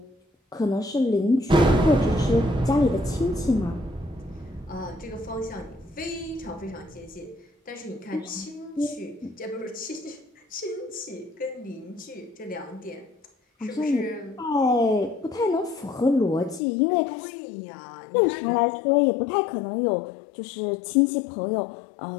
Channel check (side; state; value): right; drops out; at 16.6 s